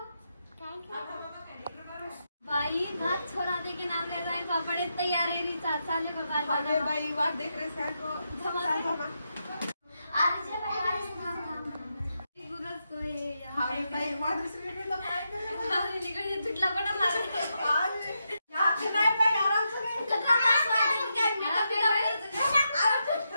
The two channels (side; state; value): both; inverted; correlation -0.84